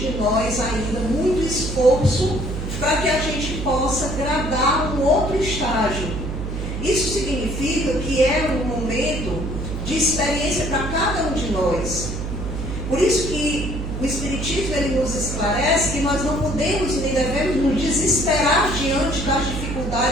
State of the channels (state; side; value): noise; right; hum, 5 dB below the sound